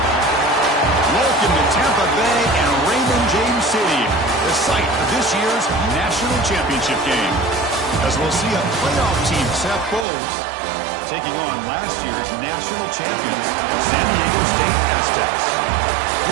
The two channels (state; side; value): drops out; left; at 10.1 s